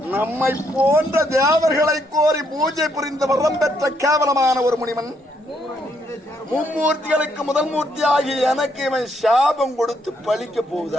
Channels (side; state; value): both; normal; correlation 0.74